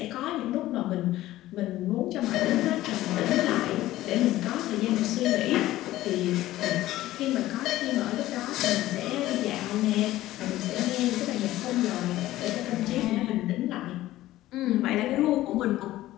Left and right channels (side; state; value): right; quieter; 15.5 dB